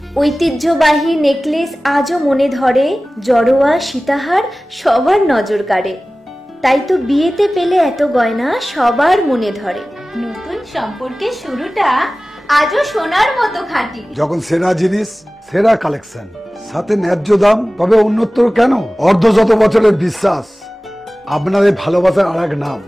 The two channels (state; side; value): normal; both; correlation 0.97